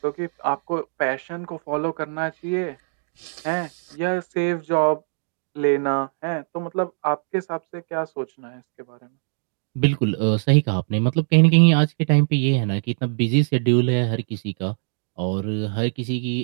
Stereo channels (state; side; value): silent; left; digital silence